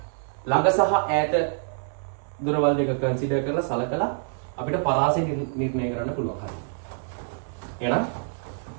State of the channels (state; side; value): silent; left; 61 dB below the other